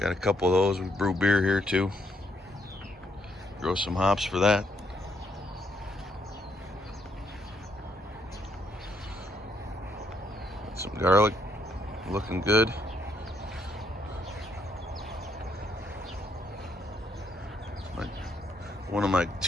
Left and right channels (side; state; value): both; normal; correlation 0.73